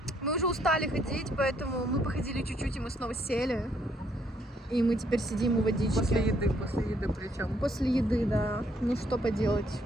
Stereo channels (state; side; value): normal; both; correlation 0.69